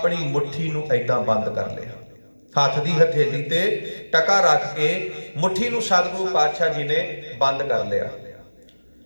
मुट्ठी नूं ऐदां बंद कर लिया। हथ दी हथेली ते टका रख के मुट्ठी नूं सतगुरु पातशाह जी ने बंद कर लिया।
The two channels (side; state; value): both; inverted; correlation -1.00